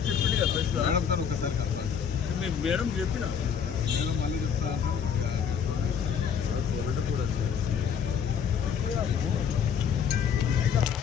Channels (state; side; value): quieter; right; 7.6 dB